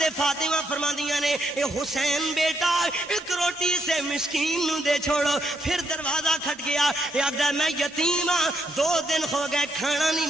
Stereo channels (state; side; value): normal; both; correlation 0.77